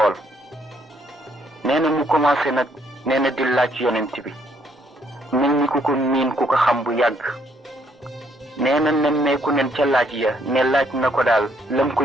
nee na mu commencé nag nee na di laaj yonent bi mel ni ku ko miin ku ko xam bu yàgg nee na nemmeeku nen ca laaj ya ne laaj na ko daal lam ko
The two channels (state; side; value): normal; both; correlation 0.69